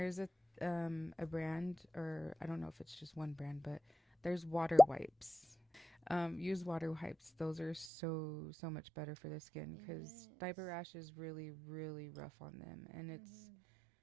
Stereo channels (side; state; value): left; drops out; at 7.9 s